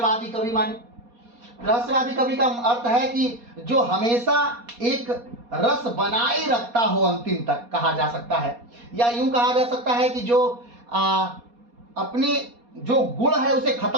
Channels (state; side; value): late; left; 4.2 ms